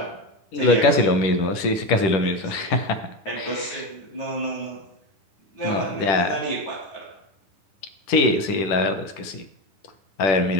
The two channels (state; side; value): late; right; 10 ms